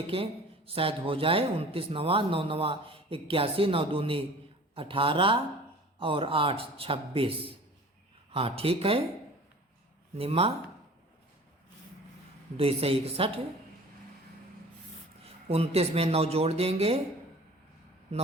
शायद हो जाए। 29 नवा 9 नवा 81, 9 दूनी 18 और 8 26। हाँ ठीक है, निम्मा 2 से 61। 29 में 9 जोड़ देंगे,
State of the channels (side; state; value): both; normal; correlation 0.45